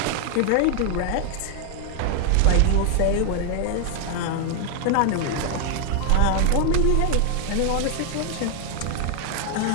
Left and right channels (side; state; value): both; different; correlation 0.00